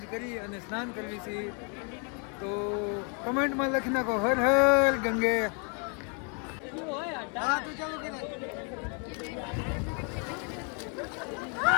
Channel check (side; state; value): right; quieter; 38.4 dB